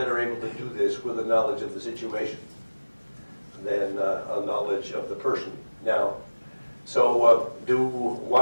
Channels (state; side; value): inverted; both; correlation -1.00